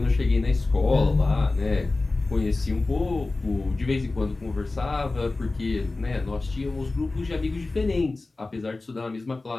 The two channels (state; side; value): quieter; right; 3.3 dB